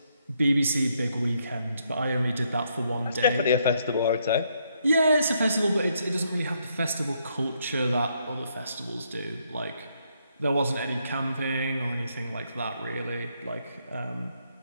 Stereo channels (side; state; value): both; inverted; correlation -0.74